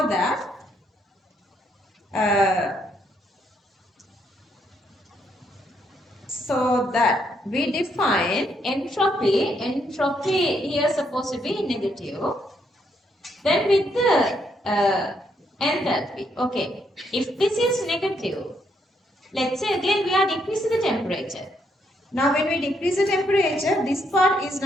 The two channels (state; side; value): normal; both; correlation 0.74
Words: that we define entropy here is supposed to be negative. Then with the enthalpy, okay, if this is negative, let's say again we are decreasing the temperature. Now when we decrease the temperature, this part is